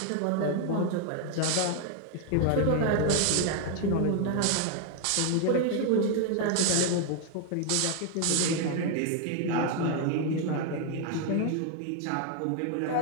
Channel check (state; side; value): different; both; correlation 0.01